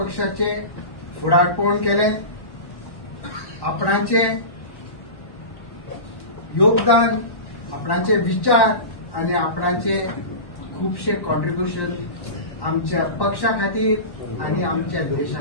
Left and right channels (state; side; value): late; right; 1.1 ms